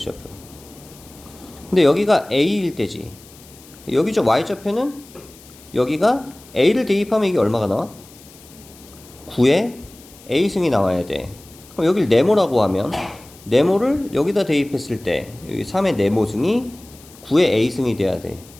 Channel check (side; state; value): left; noise; hiss, 23 dB below the sound